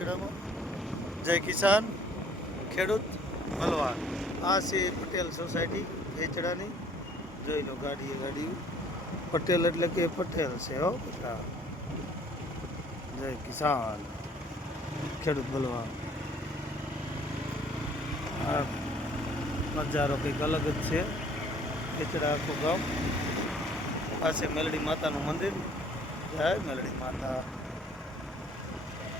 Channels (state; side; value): normal; both; correlation 0.57